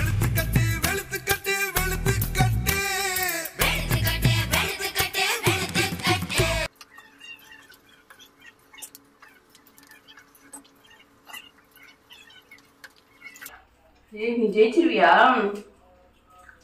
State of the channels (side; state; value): both; identical; correlation 1.00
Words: ஏய் நீ ஜெயிச்சிருவியா?